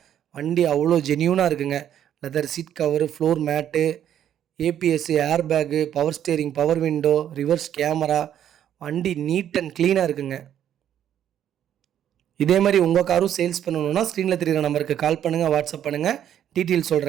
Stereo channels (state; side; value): quieter; left; 10.3 dB